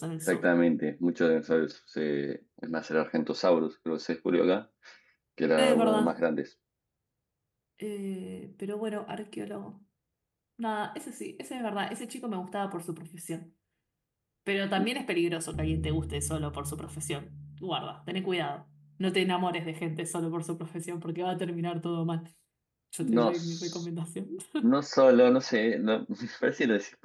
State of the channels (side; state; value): both; identical; correlation 1.00